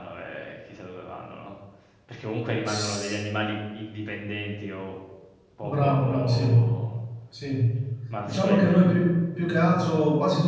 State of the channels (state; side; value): identical; both; correlation 1.00